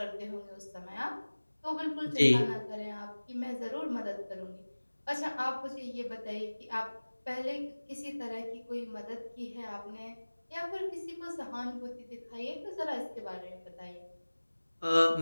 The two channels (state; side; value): inverted; both; correlation -1.00